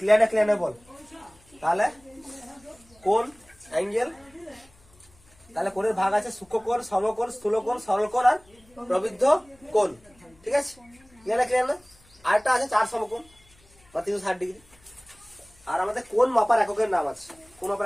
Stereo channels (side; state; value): left; noise; hum, 30 dB below the sound